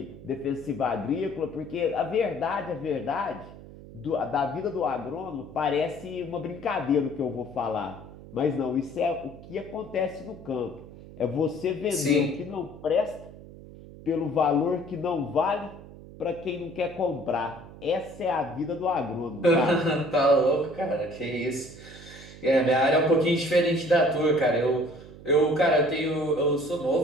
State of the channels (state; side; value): noise; right; hum, 17 dB below the sound